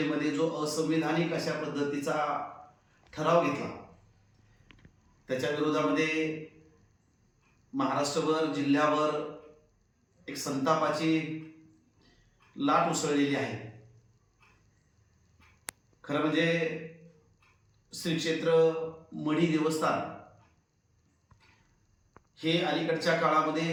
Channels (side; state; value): both; identical; correlation 1.00